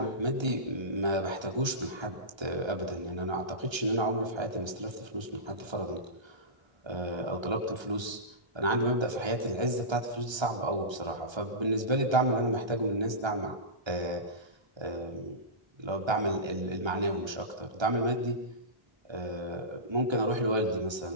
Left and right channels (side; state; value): left; late; 1.3 ms